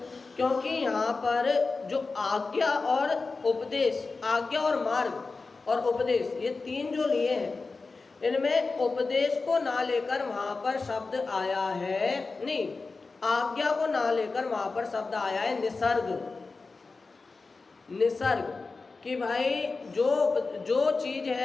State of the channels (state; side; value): quieter; right; 4.0 dB